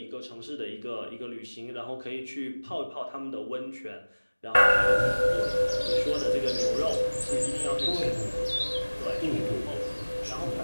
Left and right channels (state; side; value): inverted; both; correlation -1.00